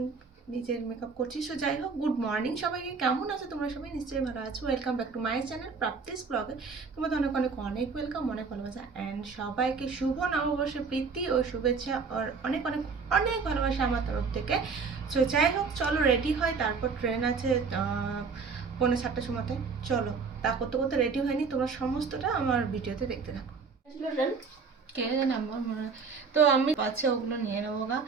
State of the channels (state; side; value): quieter; left; 5.0 dB